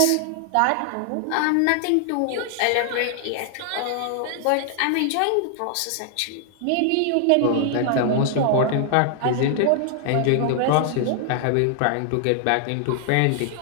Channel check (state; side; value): different; both; correlation 0.00